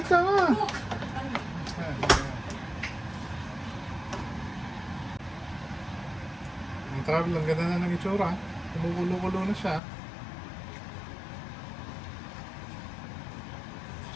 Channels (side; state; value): right; drops out; at 9.8 s